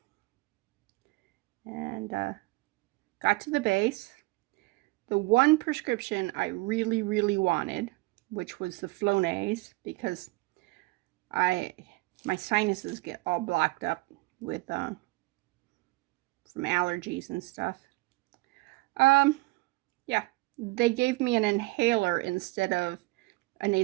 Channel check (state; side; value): quieter; left; 23.3 dB